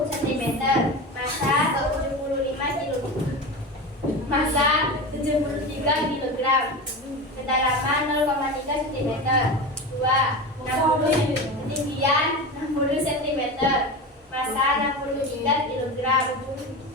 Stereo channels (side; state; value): both; normal; correlation 0.26